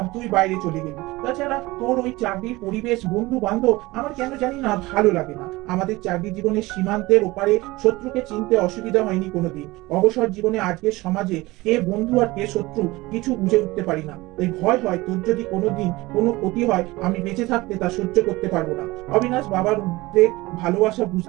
তুই বাইরে চলে গেলি। তাছাড়া তোর ওই চাকরির পরিবেশ, বন্ধু বান্ধব আমার কেন জানি না ভালো লাগে না। আমাদের চাকরি জীবনের সীমান্তের ওপারে শত্রুকে চিনতে অসুবিধা হয়নি কোনোদিন। অবসর জীবনে আজকের সমাজে কে বন্ধু আর কে শত্রু কিছু বুঝে উঠতে পারি না। এই ভয় হয় তোর যদি কোনোদিন কোনো ক্ষতি হয়, আমি বেঁচে থাকতে তা সহ্য করতে পারবো না। অবিনাশ বাবার উদ্বেগ ভালোবাসা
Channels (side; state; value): left; quieter; 20.5 dB